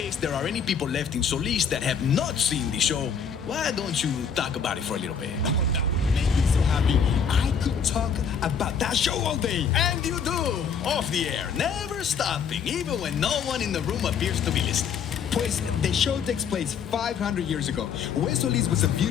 there are any people left in Solis that have not seen the show, why don't you talk about it for a little bit? Oh, that would make me so happy. I could talk about that show all day. And you do, off the air, never stopping, even when no one in the room appears to be listening. Pues, the show takes place 500 years ago. West Solis was a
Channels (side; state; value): right; quieter; 6.6 dB